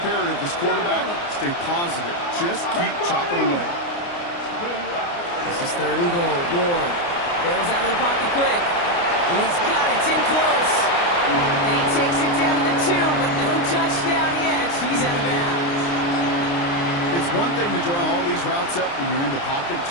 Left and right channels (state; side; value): late; right; 29 ms